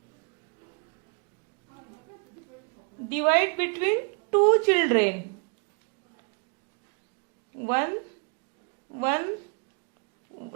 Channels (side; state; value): left; quieter; 36.7 dB